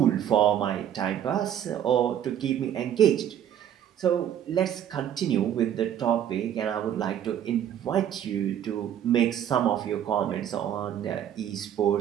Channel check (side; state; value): left; quieter; 10.1 dB